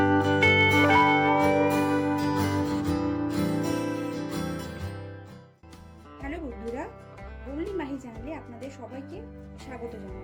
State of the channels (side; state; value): both; identical; correlation 1.00